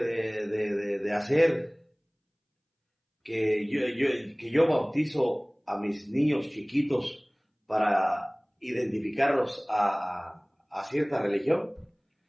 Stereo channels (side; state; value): both; identical; correlation 1.00